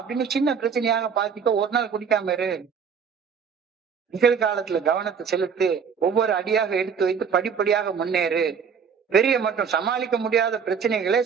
அப்படின்னு சின்ன பிரச்சனையாக பார்த்துக்க. ஒரு நாள் குடிக்காம இரு, நிகழ்காலத்துல கவனத்தை செலுத்து, ஒவ்வொரு அடியாக எடுத்து வைத்து படிப்படியாக முன்னேறு. பெரிய மற்றும் சமாளிக்க முடியாத பிரச்சனைகளை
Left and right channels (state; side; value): quieter; left; 6.6 dB